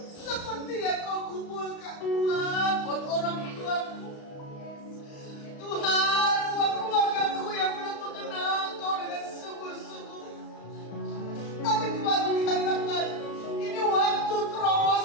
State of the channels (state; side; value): late; right; 35 ms